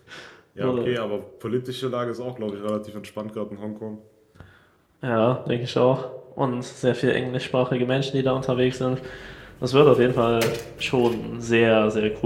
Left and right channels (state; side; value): identical; both; correlation 1.00